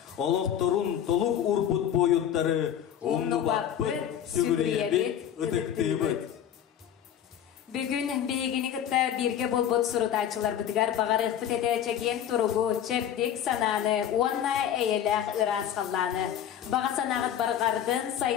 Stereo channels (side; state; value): right; quieter; 10.0 dB